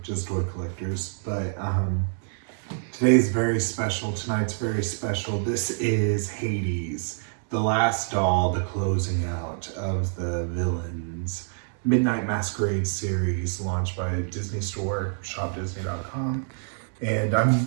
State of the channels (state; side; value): silent; left; digital silence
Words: just toy collectors. But today's very special. Tonight's very special. This is Hades, the last doll, the closing out of the Villains Midnight Masquerade series launched by Disney Store, shopdisney.com. And I'm